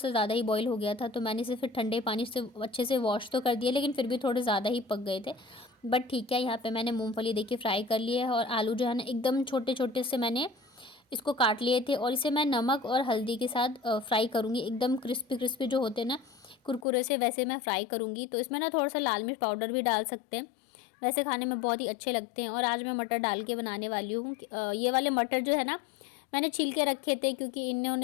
ज़्यादा ही बॉईल हो गया था। तो मैंने इसे फिर ठंडे पानी से अच्छे से वॉश तो कर दिया, लेकिन फिर भी थोड़े ज़्यादा ही पक गए थे। बट ठीक है, यहाँ पे मैंने मूंगफली देखिए फ्राई कर लिया है, और आलू जो है ना एकदम छोटे छोटे से मैंने इसको काट लिए थे, और इसे मैं नमक और हल्दी के साथ फ्राई करूँगी। एकदम क्रिस्पी क्रिस्पी जो होते हैं ना कुरकुरे से, वैसे मैं फ्राई करूँगी। तो इसमें ना थोड़ा सा लाल मिर्च पाउडर भी डाल सकते हैं, वैसे खाने में बहुत ही अच्छे लगते हैं। और आज मैं मटर डाल के बनाने वाली हूँ। ये वाले मटर जो है ना मैंने छील के रखे थे, क्योंकि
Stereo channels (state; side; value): drops out; right; at 16.9 s